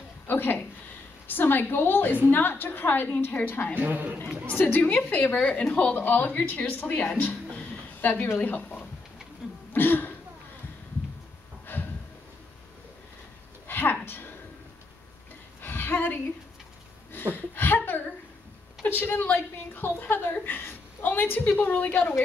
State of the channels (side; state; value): right; quieter; 3.4 dB